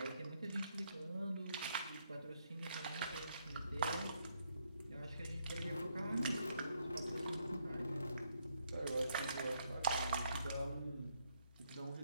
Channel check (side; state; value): both; inverted; correlation -0.74